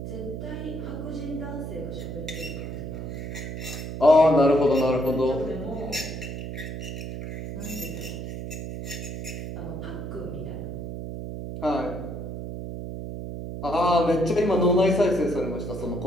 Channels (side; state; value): right; noise; hum, 7 dB below the sound